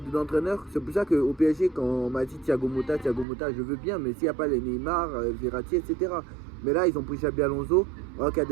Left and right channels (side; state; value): left; drops out; at 3.2 s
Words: d'entraîneur, c'est pour ça qu'au PSG quand on m'a dit Thiago Motta je veux bien, mais s'il n'y a pas les Neymar, Verratti, etc. Mais là ils ont pris Xabi Alonso, alors qu'il y a